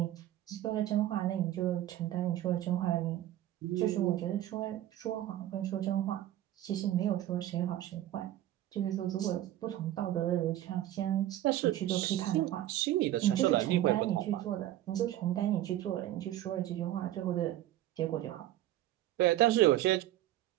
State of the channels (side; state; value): left; quieter; 13.5 dB